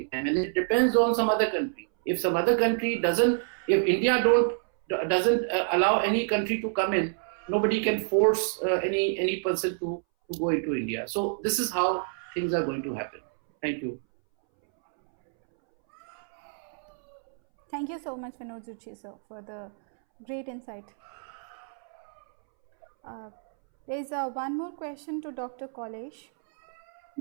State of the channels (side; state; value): left; silent; 59 dB below the other